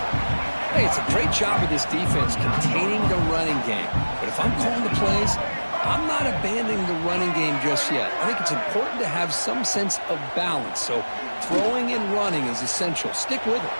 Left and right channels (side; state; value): both; inverted; correlation -1.00